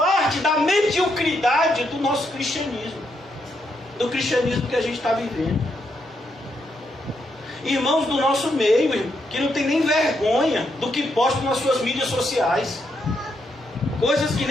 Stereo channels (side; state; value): both; normal; correlation 0.79